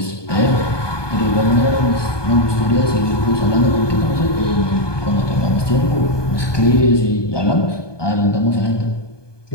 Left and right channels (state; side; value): late; right; 1.2 ms